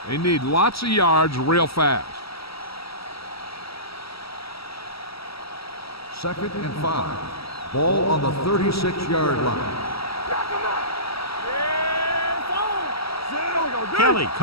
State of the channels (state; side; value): late; right; 0.76 ms